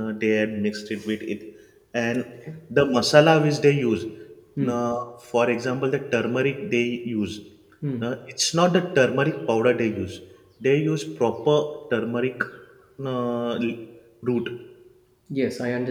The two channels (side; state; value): both; identical; correlation 1.00